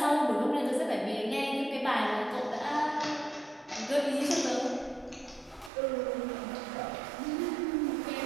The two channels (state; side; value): drops out; left; at 5.7 s